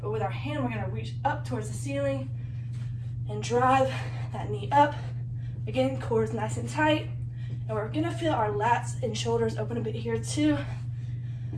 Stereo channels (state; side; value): identical; both; correlation 1.00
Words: but with our hand, we're gonna reach up towards the ceiling and drive that knee up. Again, core is nice and tight. And we're gonna feel our lats and shoulders open a bit here too.